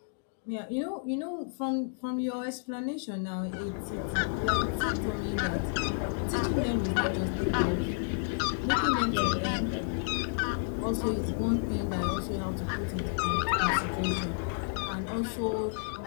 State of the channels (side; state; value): right; silent; digital silence